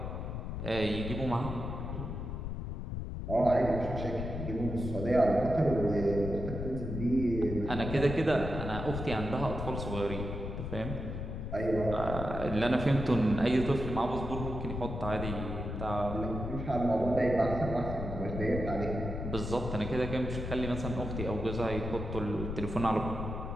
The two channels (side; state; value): left; noise; rumble, 5 dB below the sound